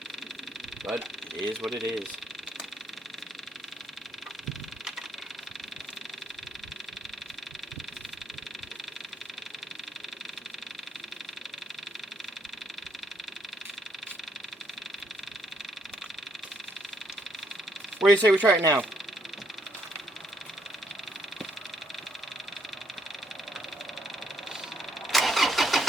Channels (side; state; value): both; normal; correlation 0.71